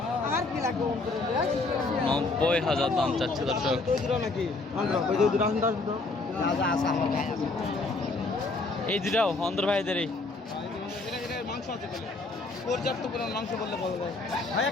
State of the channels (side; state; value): right; quieter; 3.4 dB